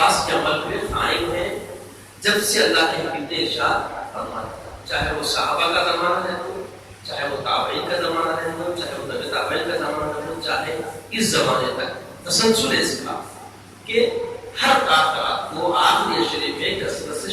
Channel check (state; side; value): identical; both; correlation 1.00